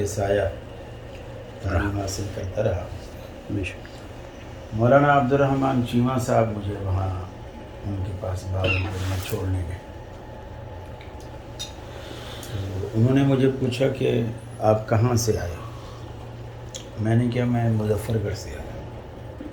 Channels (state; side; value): identical; both; correlation 1.00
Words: سایہ تعلیم حاصل کرتا رہا. مولانا عبد الرحمن چیمہ صاحب مجھے وہاں ان کے پاس بہاولپور میں چھوڑنے گئے. تو انہوں نے مجھے پوچھا کہ آپ کہاں سے آئے؟ میں نے کہا میں مظفر گڑھ سے آیا.